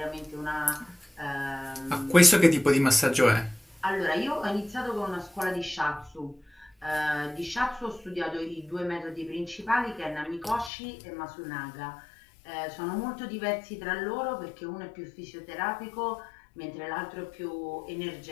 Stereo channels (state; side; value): drops out; right; at 10.7 s